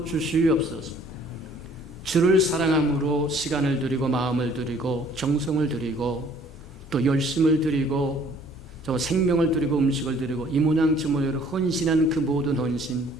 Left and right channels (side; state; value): both; normal; correlation 0.57